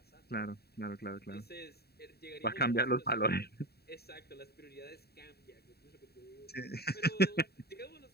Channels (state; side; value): late; right; 0.46 ms